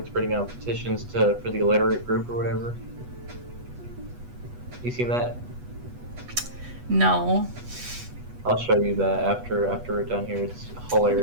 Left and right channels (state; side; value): late; left; 8.2 ms